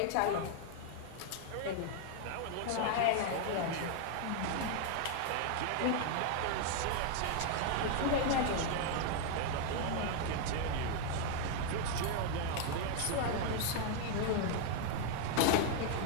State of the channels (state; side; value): different; both; correlation 0.00